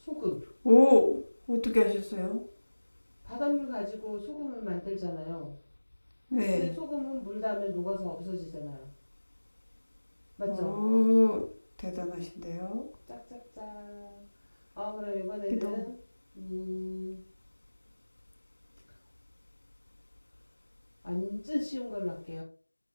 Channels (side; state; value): both; inverted; correlation -1.00